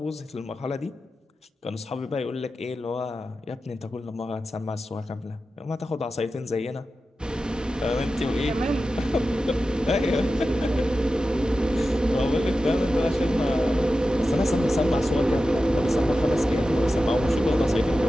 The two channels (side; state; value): both; normal; correlation 0.92